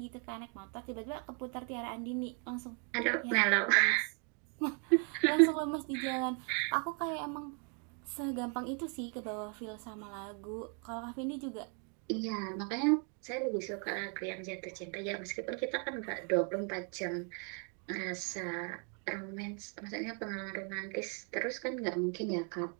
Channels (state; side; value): quieter; left; 39.2 dB